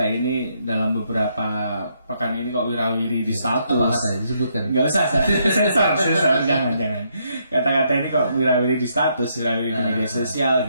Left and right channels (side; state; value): both; inverted; correlation -0.74